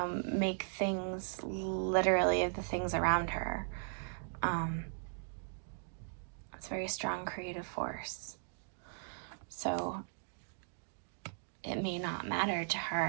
make things literally of the things around her. It's a very strong creative force. So it may not matter to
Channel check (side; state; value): left; silent; digital silence